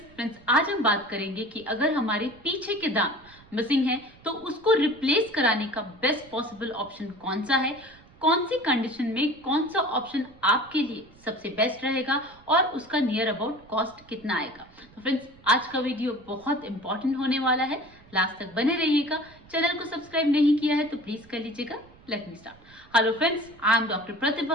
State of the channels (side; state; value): right; noise; rumble, 25 dB below the sound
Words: आज हम बात करेंगे कि अगर हमारे पीछे के दांत मिसिंग है तो उसको रिप्लेस कराने का बेस्ट पॉसिबल ऑप्शन कौन सा है, कौन सी कंडीशन में कौन सा ऑप्शन आपके लिए सबसे बेस्ट रहेगा और उसका नियर अबाउट कॉस्ट कितना आएगा। तो फ्रेंड्स आज का वीडियो बहुत इंपॉर्टेंट होने वाला है, लास्ट तक बने रहिएगा। चैनल को सब्सक्राइब नहीं किया है तो प्लीज कर लीजिएगा। Let me start. Hello friends, I am Dr.